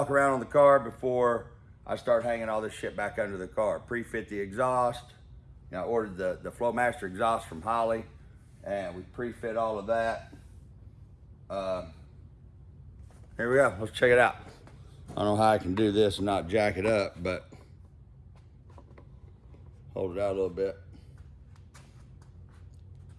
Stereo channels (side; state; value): both; identical; correlation 1.00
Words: around on the car before I start hanging all this shit back under the car. Pre-fit the exhaust. You know, I ordered the Flowmaster exhaust from Holley, and we pre-fit all of that. Here we go, let's check it out. I don't know how I can do this and not jack it up, but hold it out a little bit.